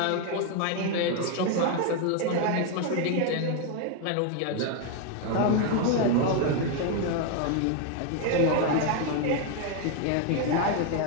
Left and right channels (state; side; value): different; both; correlation 0.01